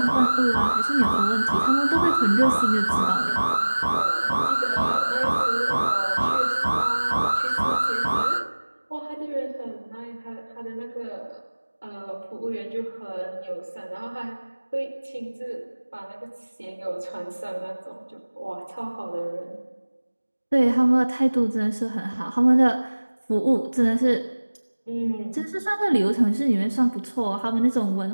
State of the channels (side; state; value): both; inverted; correlation -1.00